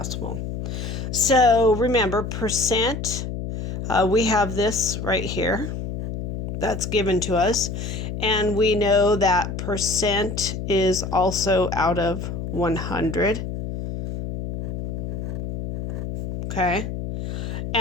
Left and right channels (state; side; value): noise; left; hum, 5 dB below the sound